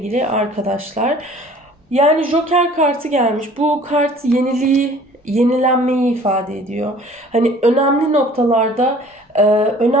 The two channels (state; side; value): normal; both; correlation 0.50